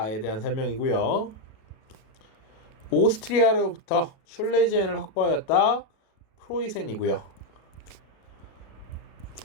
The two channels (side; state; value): right; late; 37 ms